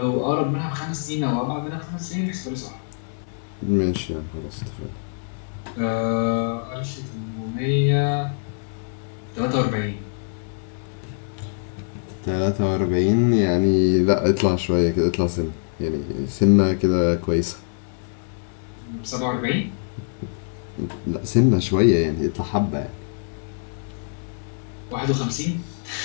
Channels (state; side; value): silent; right; 63 dB below the other